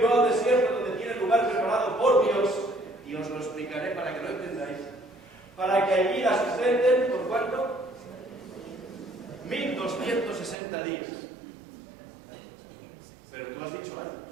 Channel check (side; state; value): left; drops out; at 10.6 s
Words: al desierto, donde tiene lugar preparado por Dios, y os lo explicaré para que lo entendáis, para que allí la sustenten, ¿por cuánto? 1260 días. Pero tú has dicho años.